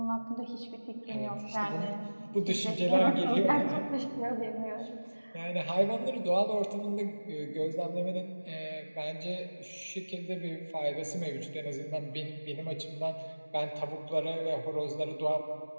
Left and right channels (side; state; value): both; inverted; correlation -1.00